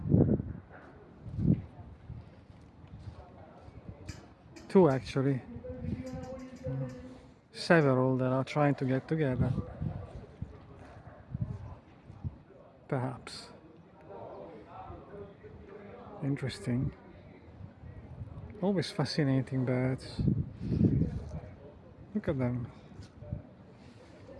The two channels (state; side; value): identical; both; correlation 1.00